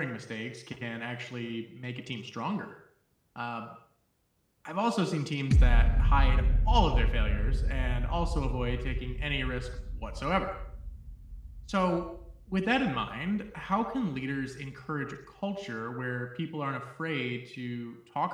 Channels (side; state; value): both; identical; correlation 1.00